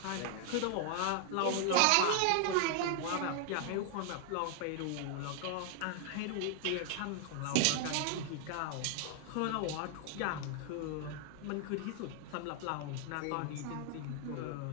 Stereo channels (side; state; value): both; different; correlation 0.00